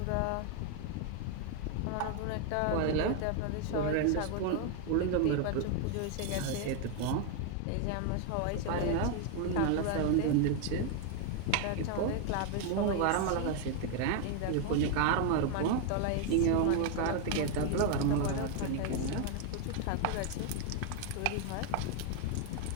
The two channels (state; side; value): different; both; correlation 0.01